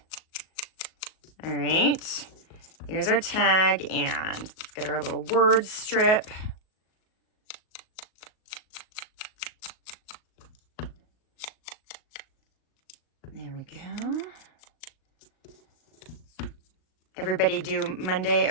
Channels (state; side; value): late; right; 38 ms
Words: All right. Here's our tag, and let's get our little word strip. There we go. Everybody do Monday